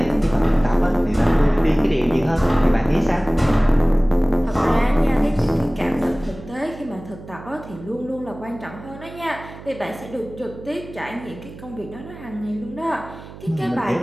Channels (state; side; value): noise; right; hum, 16 dB below the sound